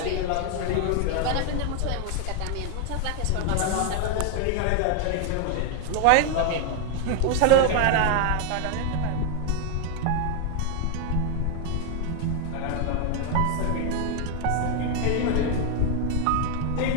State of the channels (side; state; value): both; different; correlation 0.00